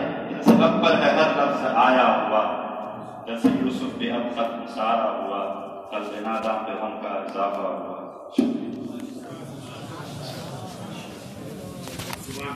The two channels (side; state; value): both; identical; correlation 1.00